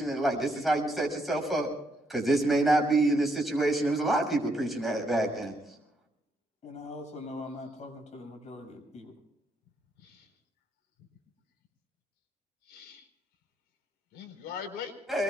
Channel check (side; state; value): both; normal; correlation 0.75